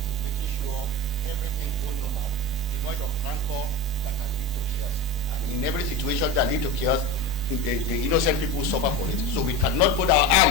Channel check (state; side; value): normal; both; correlation 0.25